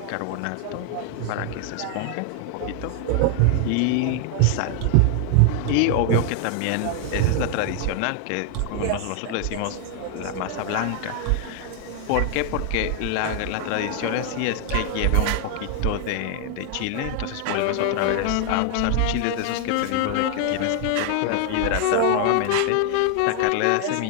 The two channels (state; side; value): different; both; correlation 0.00